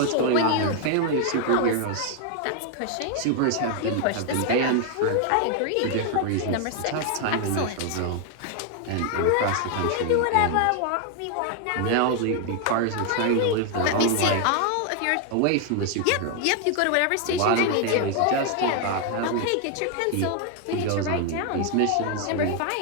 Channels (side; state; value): both; different; correlation 0.00